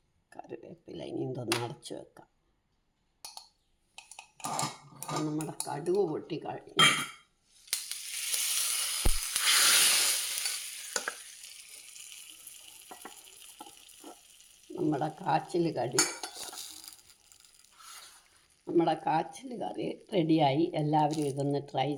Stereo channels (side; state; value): both; identical; correlation 1.00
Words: കറിവേപ്പില ഇനി ഇതൊന്ന് അടച്ച് വെക്കാം. നമ്മുടെ കടുക് പൊട്ടി കഴിഞ്ഞു. നമ്മുടെ കാച്ചിൽ കറി റെഡിയായി. എല്ലാവരും ഇതൊന്ന് ട്രൈ